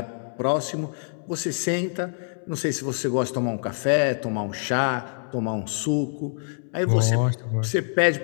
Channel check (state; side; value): silent; right; 61 dB below the other